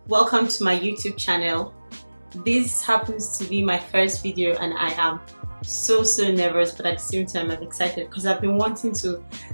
welcome to my YouTube channel. This happens to be my first video and I am so nervous, but at the same time I'm excited because I've been wanting to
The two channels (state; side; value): inverted; both; correlation -1.00